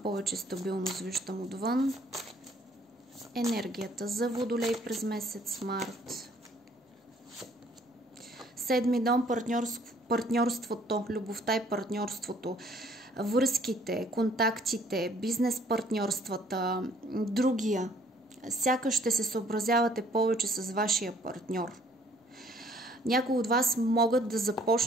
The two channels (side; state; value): both; normal; correlation 0.61